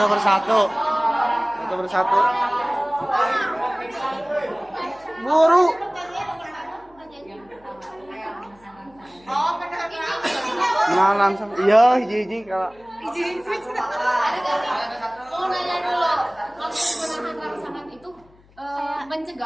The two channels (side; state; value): left; noise; hum, 29 dB below the sound